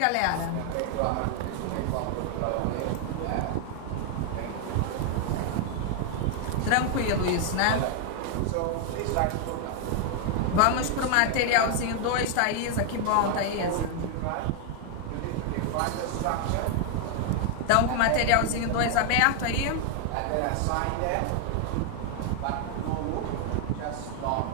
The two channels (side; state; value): both; different; correlation 0.00